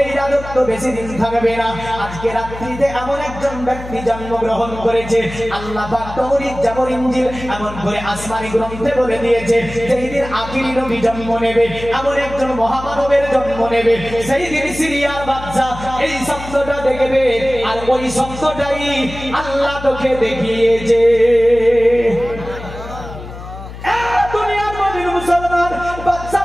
এই রাজত্ব বেশি দিন থাকবে না। আজকে রাত্রিতে এমন একজন ব্যক্তি জন্মগ্রহণ করেছে, আল্লাহ পাক তৌরাত, জাবর, ইনজিল এমন করে আসমানি গ্রন্থে বলে দিয়েছে, যেই দিন আখিরি নবী জন্ম নেবে, এমন একজন মহামানবের জন্ম নেবে, সেই দিন সিরিয়ার বাচ্চা এই শব্দটা দেখবে। আর ওই শব্দটাই আল্লাহ তোকে দেখিয়েছে। দুনিয়ার মধ্যে মুসলমান বাচ্চা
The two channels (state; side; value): noise; left; hum, 12 dB below the sound